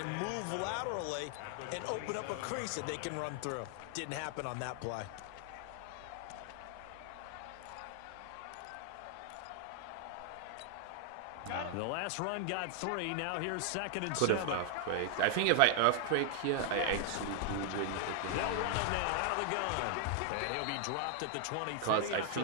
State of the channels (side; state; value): both; different; correlation 0.00